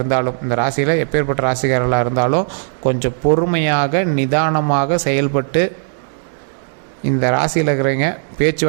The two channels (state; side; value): silent; left; digital silence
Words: இந்த ராசியில் எப்பேற்பட்ட ராசிக்காரர்களாக இருந்தாலும் கொஞ்சம் பொறுமையாக நிதானமாக செயல்பட்டு இந்த ராசியில் இருக்கிறவங்க